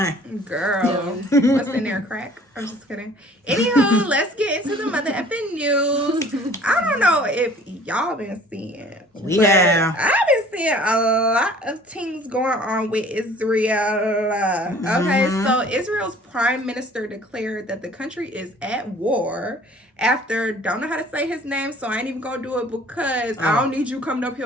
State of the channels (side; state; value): both; normal; correlation 0.51